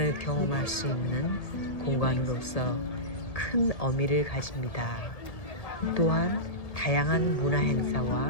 경험할 수 있는 공간으로서 큰 의미를 가집니다. 또한 다양한 문화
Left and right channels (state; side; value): late; right; 1.8 ms